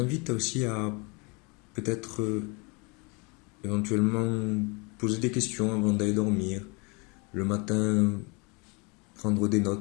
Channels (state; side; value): quieter; right; 29.9 dB